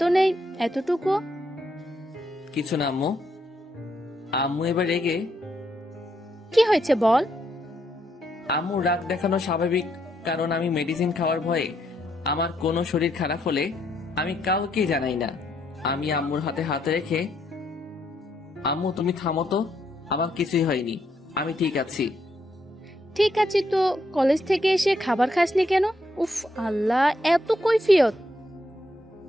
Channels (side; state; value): both; normal; correlation 0.76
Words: নেই এতটুকু। কিছু না আম্মু। আম্মু এবার রেগে, কি হয়েছে বল? আম্মু রাগ দেখানো স্বাভাবিক, কারণ আমি মেডিসিন খাওয়ার ভয়ে আমার কোনো শরীর খারাপ হলে আমি কাউকে জানাই না। আমি আম্মুর হাতে হাত রেখে, আম্মু তুমি থামো তো, আমার কিছুই হয়নি, আমি ঠিক আছি। ঠিক আছে তো, কলেজ থেকে এসে খাবার খাসনি কেন? উফ আল্লাহ, এত কৈফিয়ত।